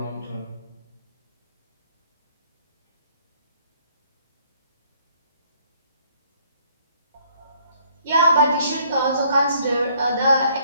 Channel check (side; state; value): both; inverted; correlation -0.63